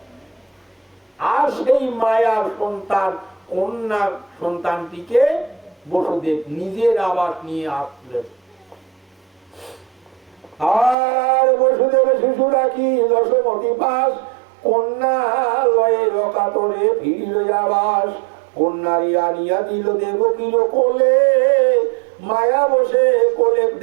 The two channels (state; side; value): drops out; left; at 11.0 s